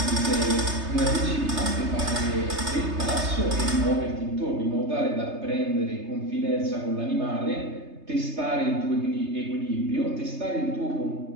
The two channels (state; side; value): late; left; 3.3 ms